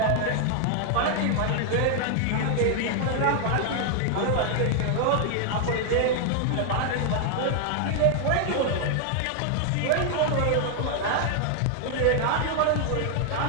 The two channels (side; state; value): both; different; correlation 0.00